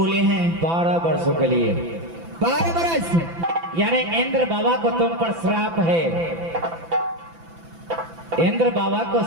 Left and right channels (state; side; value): late; left; 6.0 ms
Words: हैं? 12 वर्षों के लिए। 12 बरस? यानी इंद्र बाबा को तुम पर श्राप है। इंद्र बाबा को